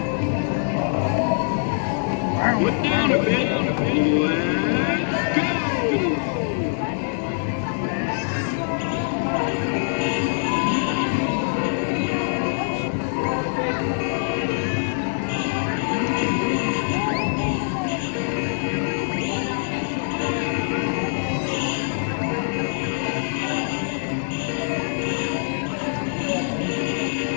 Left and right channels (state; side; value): silent; right; 62 dB below the other